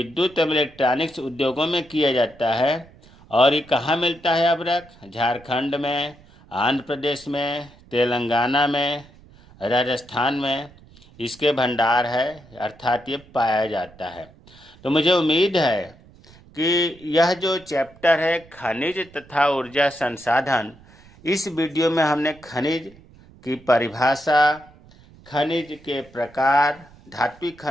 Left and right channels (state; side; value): noise; right; rumble, 25 dB below the sound